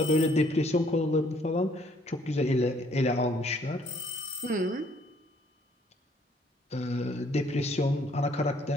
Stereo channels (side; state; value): both; normal; correlation 0.64